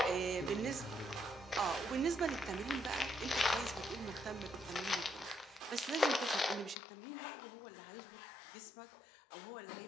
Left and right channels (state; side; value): drops out; right; at 6.8 s